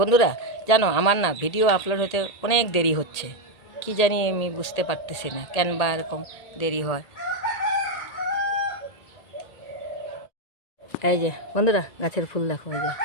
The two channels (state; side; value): late; right; 1.8 ms